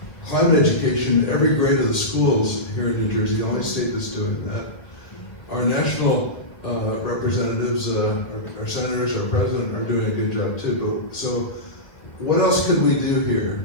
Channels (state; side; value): late; right; 1.9 ms